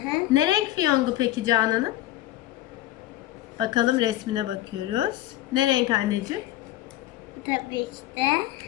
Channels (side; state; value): right; quieter; 14.7 dB